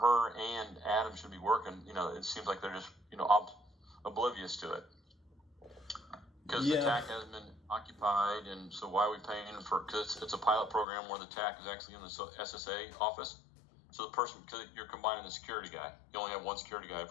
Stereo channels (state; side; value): drops out; right; at 10.9 s